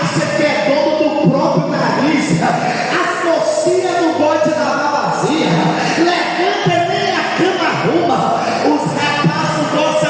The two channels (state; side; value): identical; both; correlation 1.00